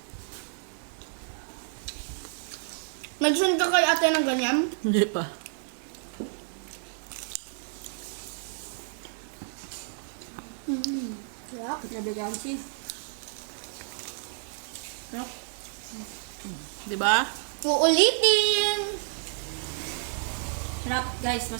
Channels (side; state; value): left; silent; 58 dB below the other